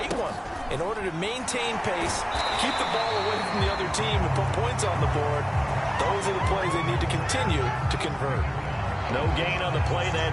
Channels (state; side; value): identical; both; correlation 1.00